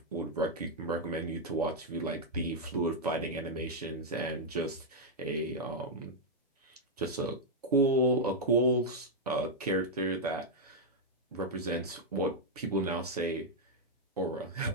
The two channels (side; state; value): both; normal; correlation -0.03